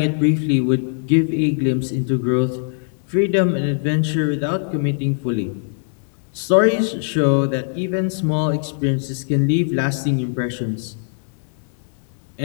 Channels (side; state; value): right; silent; digital silence